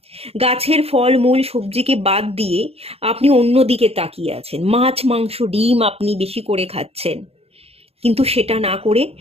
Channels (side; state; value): left; late; 0.29 ms